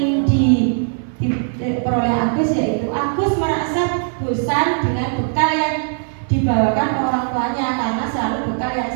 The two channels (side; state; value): left; silent; 61 dB below the other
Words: diperoleh Agus yaitu Agus merasa bosan dengan bekal yang dibawakan orang tuanya karena selalu bekal yang